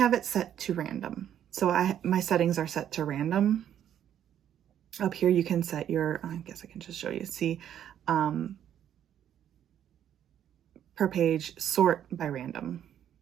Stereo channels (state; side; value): quieter; left; 10.2 dB